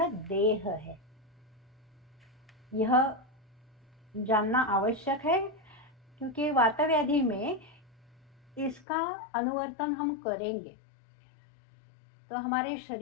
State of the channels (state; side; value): drops out; right; at 8.8 s